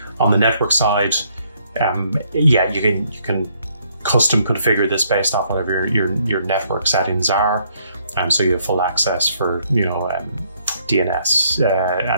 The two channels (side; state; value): both; inverted; correlation -0.69